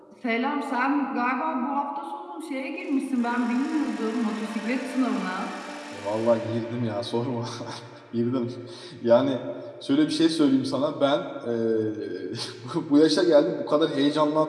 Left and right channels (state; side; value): identical; both; correlation 1.00